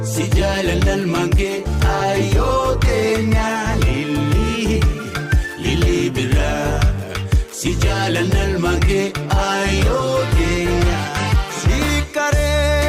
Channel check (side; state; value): both; identical; correlation 1.00